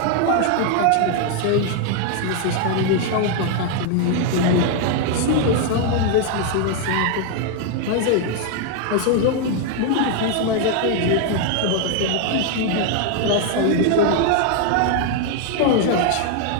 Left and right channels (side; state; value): both; different; correlation 0.00